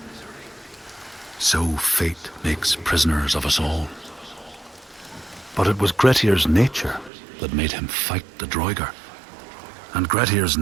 So fate makes prisoners of us all. But it was Grettir's nature that made him fight the Droigar, and Grettir's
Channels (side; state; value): left; drops out; at 7.1 s